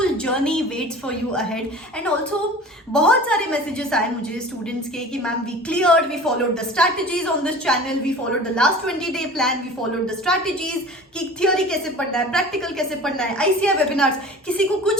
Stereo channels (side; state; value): both; normal; correlation 0.40